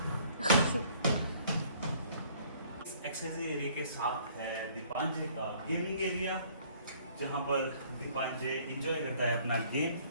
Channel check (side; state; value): both; inverted; correlation -0.59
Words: एक्सरसाइजिंग एरिया के साथ है दीपांजे का गेमिंग एरिया, जहाँ पर दीपांजे एंजॉय करता है अपना गेम।